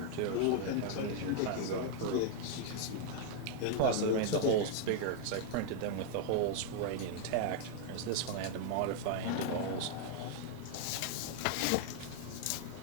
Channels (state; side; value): different; both; correlation 0.00